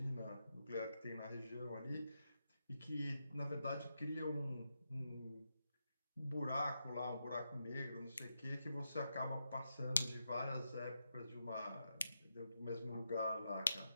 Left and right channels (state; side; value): inverted; both; correlation -0.85